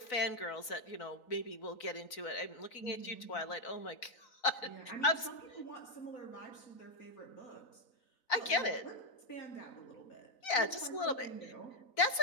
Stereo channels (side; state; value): right; late; 4.0 ms